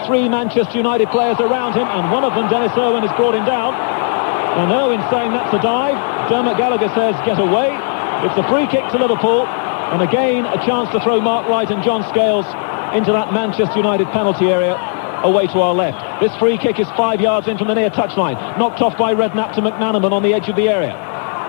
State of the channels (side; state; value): right; silent; 59 dB below the other